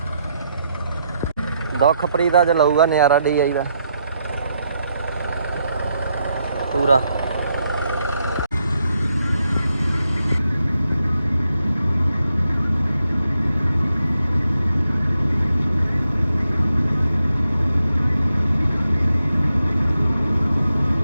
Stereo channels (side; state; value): both; inverted; correlation -0.81